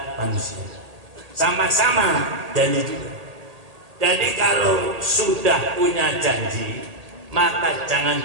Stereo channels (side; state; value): left; late; 1.8 ms